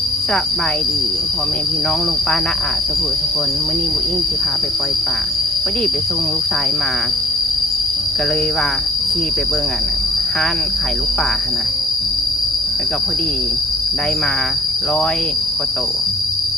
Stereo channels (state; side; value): normal; both; correlation 0.56